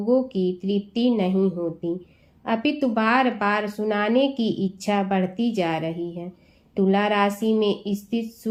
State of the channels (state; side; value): identical; both; correlation 1.00